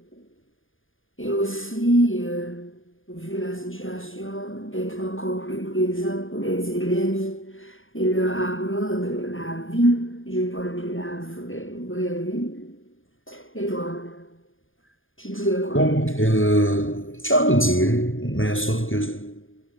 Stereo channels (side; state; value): right; late; 0.59 ms